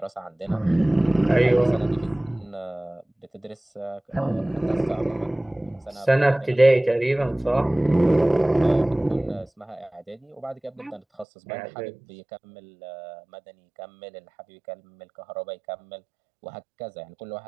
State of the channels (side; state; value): left; drops out; at 11.2 s